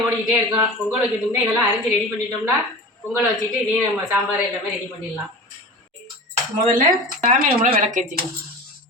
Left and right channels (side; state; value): both; normal; correlation 0.33